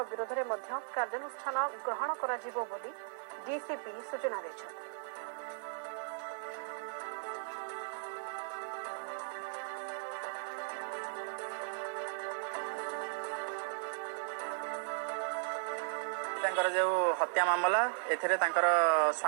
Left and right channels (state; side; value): silent; left; digital silence